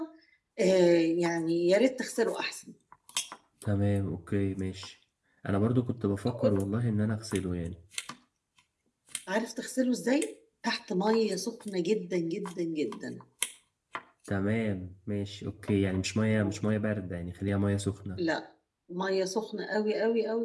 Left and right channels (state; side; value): identical; both; correlation 1.00